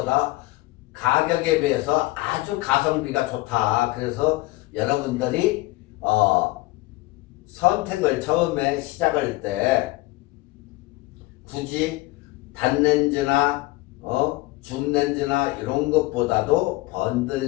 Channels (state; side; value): quieter; right; 20.1 dB